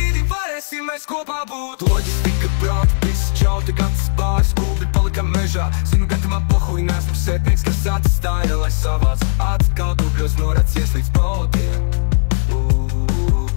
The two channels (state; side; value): silent; right; digital silence